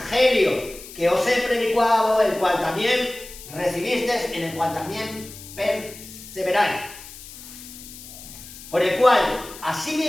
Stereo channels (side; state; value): left; noise; hiss, 16 dB below the sound